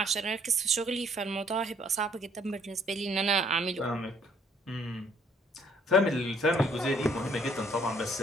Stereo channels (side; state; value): both; normal; correlation 0.63